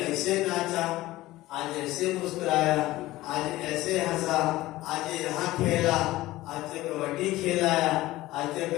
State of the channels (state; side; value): quieter; right; 17.3 dB